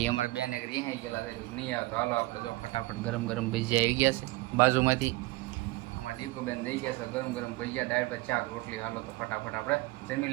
અમારે બેન એક રિહાઈ ગયેલા છે, નહીં આવે. તો હાલો આપણે જો ફટાફટ ગરમ ગરમ ભજીયા આવી ગયા છે બાજુમાંથી. અમારા દીકુબેન દઈ ગયા છે ગરમ ગરમ ભજીયા, દાળ ભાત, શાક, રોટલી. હાલો તો ફટાફટ આપણે જમી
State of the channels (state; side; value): quieter; left; 20.7 dB